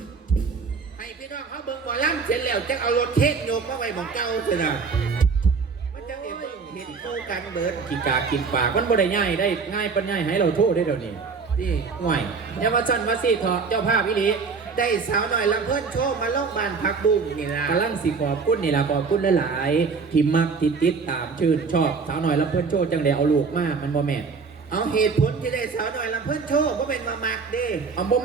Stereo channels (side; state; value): left; quieter; 5.0 dB